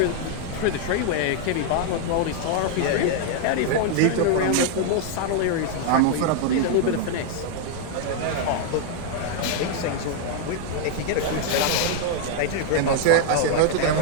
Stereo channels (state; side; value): different; both; correlation 0.00